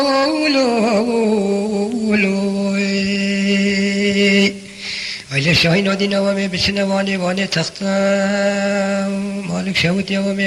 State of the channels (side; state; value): both; identical; correlation 1.00